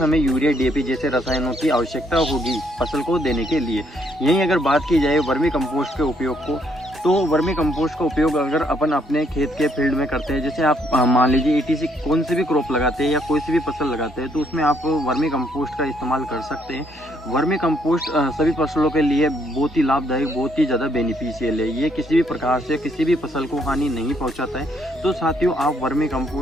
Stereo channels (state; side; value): normal; both; correlation 0.70